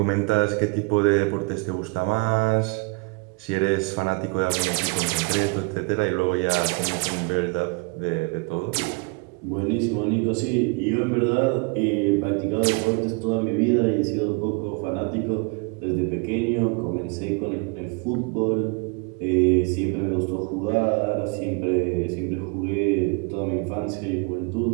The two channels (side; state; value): left; quieter; 31.6 dB